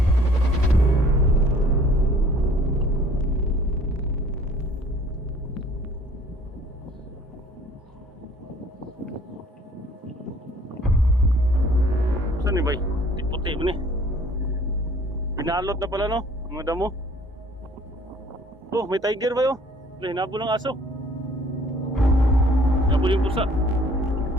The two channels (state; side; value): normal; both; correlation 0.55